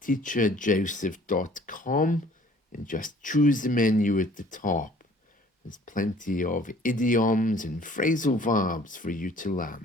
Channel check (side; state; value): both; normal; correlation 0.54